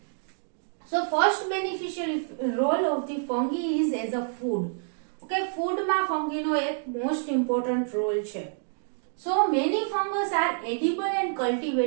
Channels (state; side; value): silent; left; digital silence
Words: So first beneficial role of the fungi is as a food. Okay, food માં fungi નો એક most important role છે. So many fungus are edible and